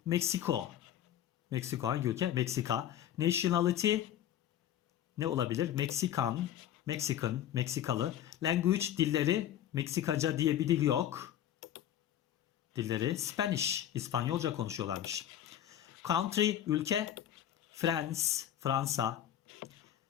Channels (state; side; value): quieter; right; 11.2 dB